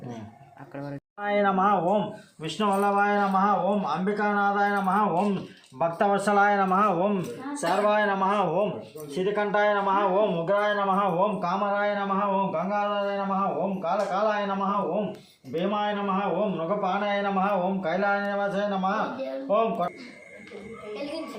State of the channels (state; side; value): identical; both; correlation 1.00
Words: అక్కడ వరకు नमः ओम विष्णुवल्लभाय नमः ओम अंबिकानाथाय नमः ओम भक्तवत्सलाय नमः ओम सर्वाय नमः ओम श्रीकंठाय नमः ओम उग्राय नमः ओम कामराय नमः ओम गंगाधराय नमः ओम कालकालाय नमः ओम भीमाय नमः ओम मृगपाणाय नमः ओम कैलायनिवासाय नमः ओम